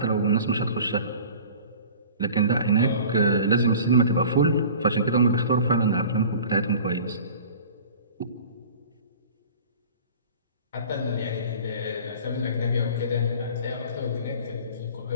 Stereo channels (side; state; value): both; inverted; correlation -0.43